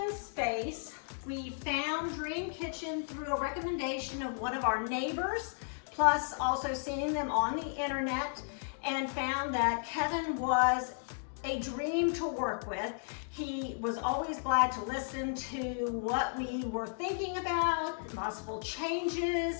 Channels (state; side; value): silent; right; digital silence